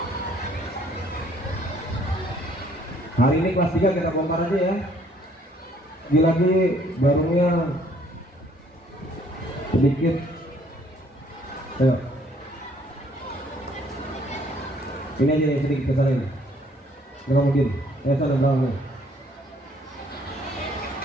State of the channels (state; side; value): normal; both; correlation 0.62